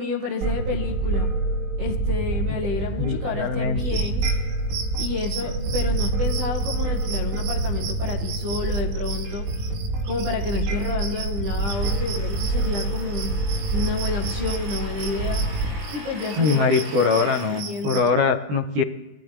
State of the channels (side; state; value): left; late; 20 ms